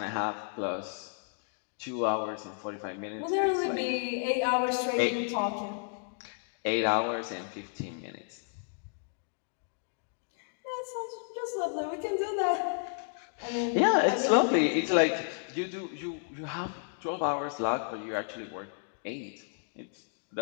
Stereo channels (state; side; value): silent; right; 56 dB below the other